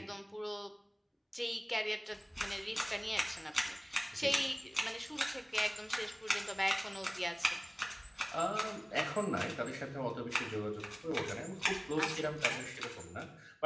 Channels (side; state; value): both; identical; correlation 1.00